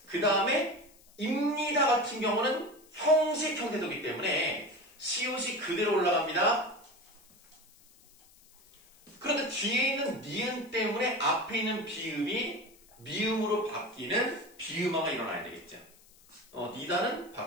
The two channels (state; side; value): noise; left; hiss, 27 dB below the sound